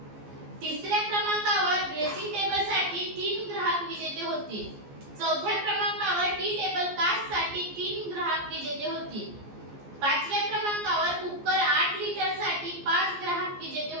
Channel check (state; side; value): late; left; 14 ms